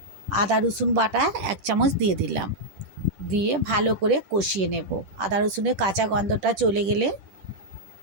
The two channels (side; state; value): left; late; 10 ms